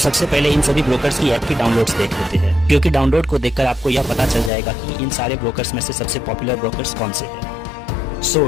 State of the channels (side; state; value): right; drops out; at 4.5 s